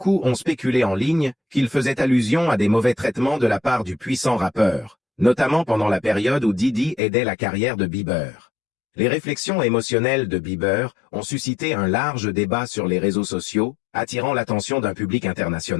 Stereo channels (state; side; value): drops out; right; at 7.0 s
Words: ont spéculé en ligne qu'il faisait allusion à des mauvais traitements de la part du puissant rappeur, notamment pendant la période où Diddy aidait la carrière de Bieber. Les réflexions émotionnelles de Bieber ont suscité un large débat sur les réseaux sociaux, attirant l'attention d'un public